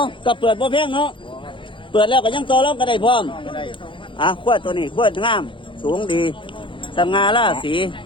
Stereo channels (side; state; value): right; late; 0.24 ms